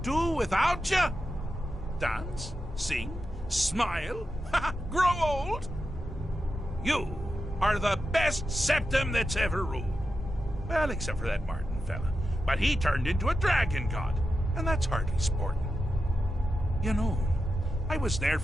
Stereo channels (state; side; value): normal; both; correlation 0.89